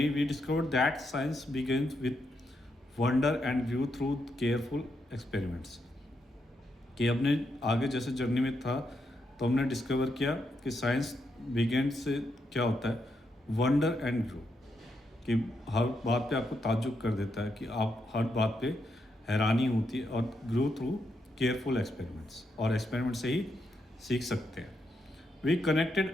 we discover that science begins with wonder and view through careful experiments. कि हमने आगे जैसे जर्नी में था तो हमने डिस्कवर किया कि साइंस बिगिन से क्या होता है, वंडर एंड व्यू, कि हर बात पे आपको ताज्जुब कर देता है, कि आप हर बात पे हैरानी होती है, और ग्रो थ्रू केयरफुल एक्सपेरिमेंट्स, और एक्सपेरिमेंट से ही सीख सकते हैं। We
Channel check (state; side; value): normal; both; correlation 0.81